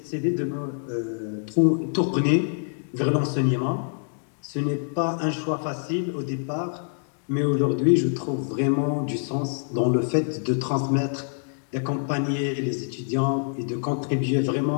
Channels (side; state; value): right; silent; digital silence